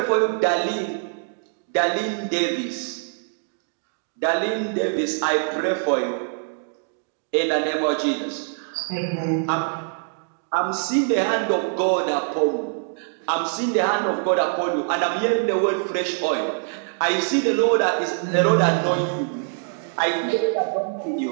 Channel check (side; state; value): left; silent; digital silence